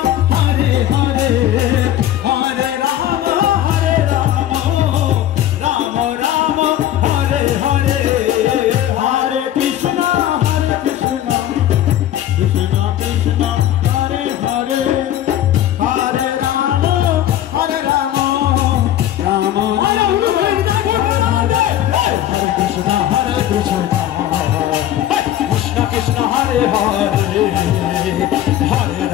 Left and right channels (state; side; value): quieter; right; 12.1 dB